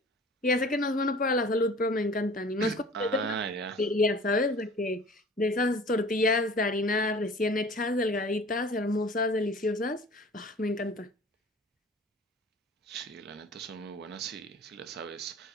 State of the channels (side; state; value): both; normal; correlation 0.45